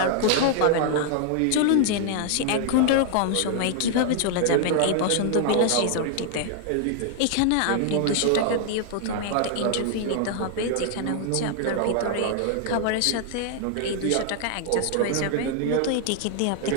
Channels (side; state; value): both; different; correlation 0.00